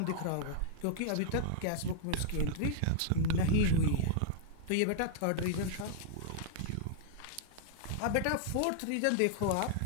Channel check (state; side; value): different; both; correlation -0.01